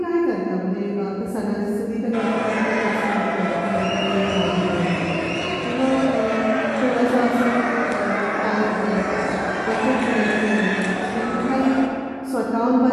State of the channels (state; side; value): identical; both; correlation 1.00